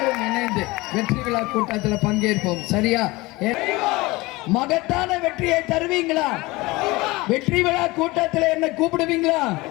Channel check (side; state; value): right; quieter; 21.8 dB